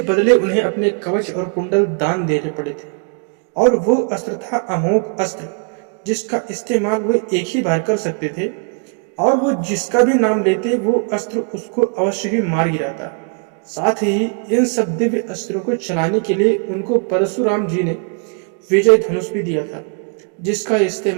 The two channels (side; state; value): left; quieter; 38.7 dB